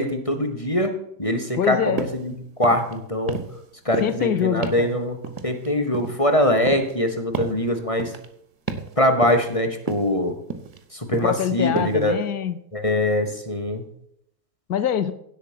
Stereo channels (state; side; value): late; right; 1.6 ms